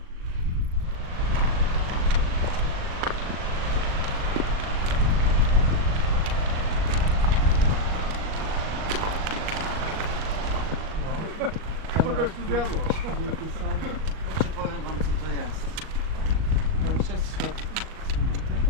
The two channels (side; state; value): left; late; 38 ms